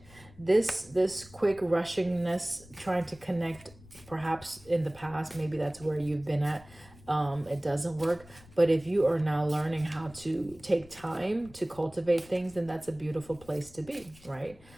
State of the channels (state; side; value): noise; left; rumble, 22 dB below the sound